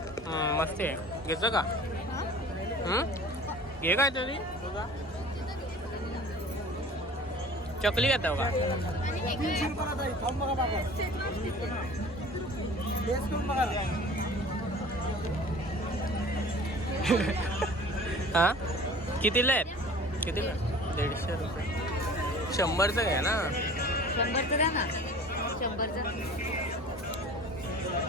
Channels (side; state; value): both; normal; correlation 0.44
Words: मस्त आहे. घेतो का? घे काय तरी. चकली घेतो का? हा कितीला आहेत? कितीला? 150 रुपये. 100चं घ्या ना. 100चं द्या ना. 100चं